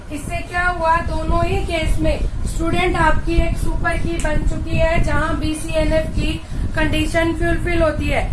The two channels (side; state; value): both; identical; correlation 1.00